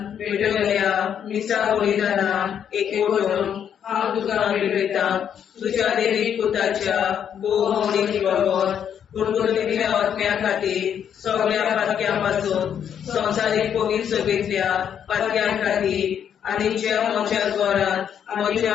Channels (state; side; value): quieter; right; 8.7 dB